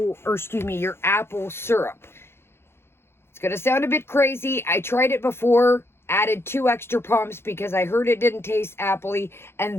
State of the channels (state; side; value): late; right; 0.12 ms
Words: or excuse me, your apple syrup. It's going to sound a bit crazy. I tried it before, added 2 extra pumps because I heard it didn't taste appley.